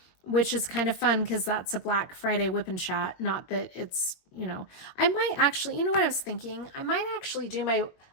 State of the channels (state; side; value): late; right; 22 ms